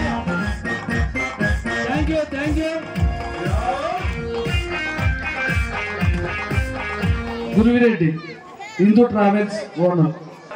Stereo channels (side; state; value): both; identical; correlation 1.00